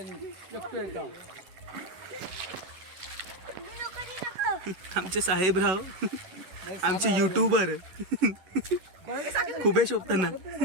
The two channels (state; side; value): late; left; 11 ms